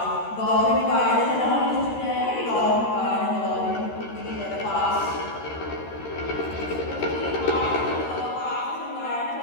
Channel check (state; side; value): late; right; 13 ms